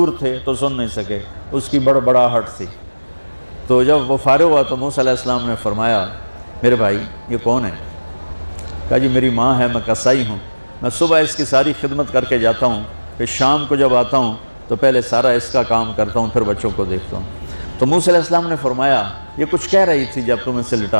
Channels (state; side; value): inverted; both; correlation -1.00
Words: تھے تو سن نہیں سکے، اس کی بڑبڑاہٹ تھی۔ تو جب وہ فارغ ہوا تو موسیٰ علیہ السلام نے فرمایا میرے بھائی یہ کون ہے؟ کہا جی میری ماں ہے، میں کسائی ہوں، میں صبح اس کی ساری خدمت کر کے جاتا ہوں، پھر شام کو جب آتا ہوں تو پہلے سارا اس کا کام کرتا ہوں، پھر بچوں کو دیکھتا ہوں۔ تو موسیٰ علیہ السلام نے فرمایا یہ کچھ کہہ رہی تھی جب تم اسے